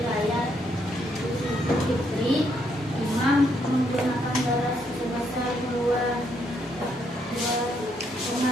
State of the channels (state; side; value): normal; both; correlation 0.74